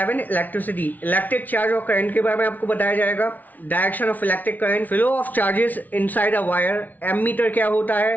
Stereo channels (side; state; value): right; late; 0.079 ms